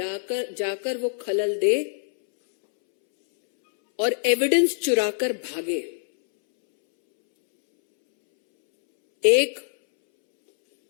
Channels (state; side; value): silent; right; 63 dB below the other